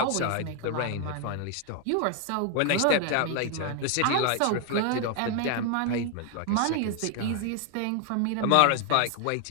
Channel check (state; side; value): different; both; correlation 0.00